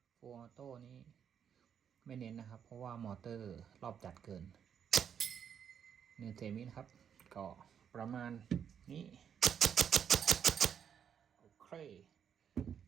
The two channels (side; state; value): left; quieter; 8.1 dB